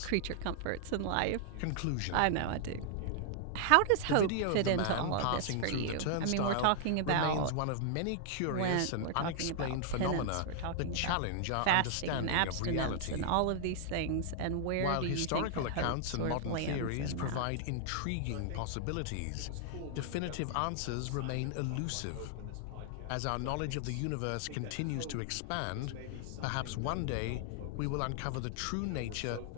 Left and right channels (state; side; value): different; both; correlation -0.01